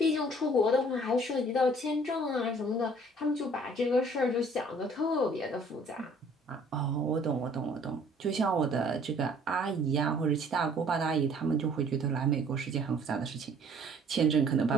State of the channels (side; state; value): both; normal; correlation 0.56